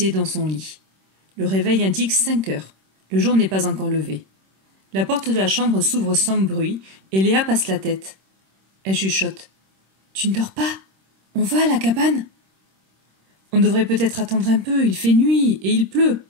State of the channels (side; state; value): left; late; 26 ms